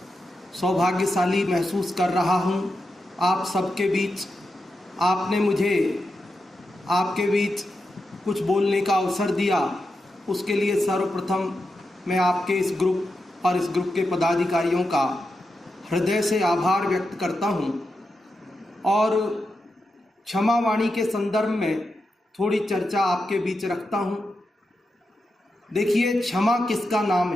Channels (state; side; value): normal; both; correlation 0.88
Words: सौभाग्यशाली महसूस कर रहा हूँ आप सबके बीच। आपने मुझे आपके बीच कुछ बोलने का अवसर दिया, उसके लिए सर्वप्रथम मैं आपके इस ग्रुप और इस ग्रुप के पदाधिकारियों का हृदय से आभार व्यक्त करता हूँ। और क्षमा वाणी के संदर्भ में थोड़ी चर्चा आपके बीच रखता हूँ। देखिए, क्षमा किसका नाम